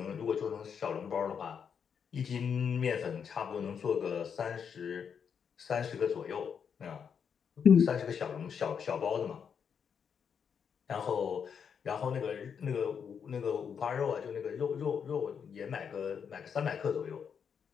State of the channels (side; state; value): right; quieter; 7.1 dB